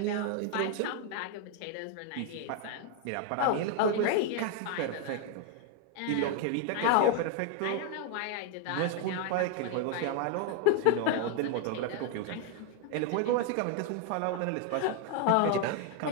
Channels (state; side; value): different; both; correlation 0.00